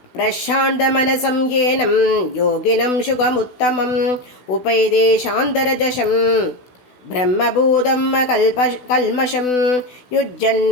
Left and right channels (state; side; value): late; right; 16 ms